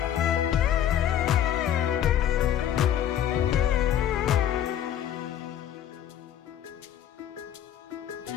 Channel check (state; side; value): quieter; right; 10.6 dB